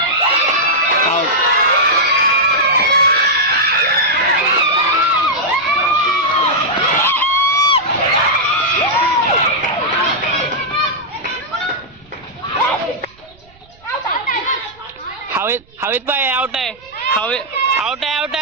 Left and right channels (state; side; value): noise; right; rumble, 29 dB below the sound